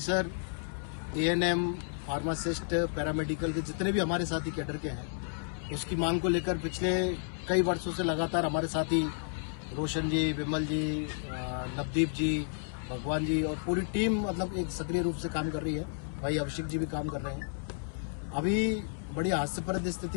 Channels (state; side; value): silent; right; 56 dB below the other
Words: ANM, pharmacist, paramedical के जितने भी हमारे साथी कैडर के हैं, उसकी मांग को लेकर पिछले कई वर्षों से लगातार हमारे साथी रोशन जी, विमल जी, नवदीप जी, भगवान जी और पूरी टीम मतलब एक सक्रिय रूप से काम कर रही है। भाई अभिषेक जी भी काम कर रहे हैं। अभी बड़ी हास्यप्रद